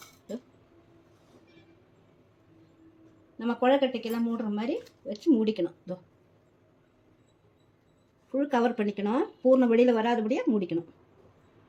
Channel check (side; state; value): both; identical; correlation 1.00